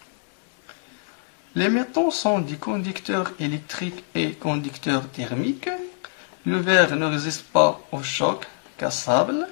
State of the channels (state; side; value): silent; right; digital silence